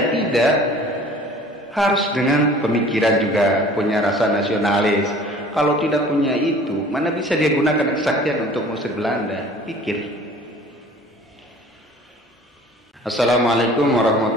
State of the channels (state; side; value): normal; both; correlation 0.48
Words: Tidak. Harus dengan pemikiran juga, punya rasa nasionalis. Kalau tidak punya itu, mana bisa dia gunakan kesaktian untuk mengusir Belanda? Pikir. Assalamualaikum